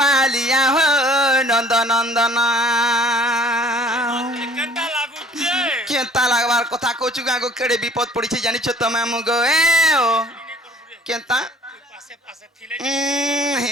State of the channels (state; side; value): normal; both; correlation 0.53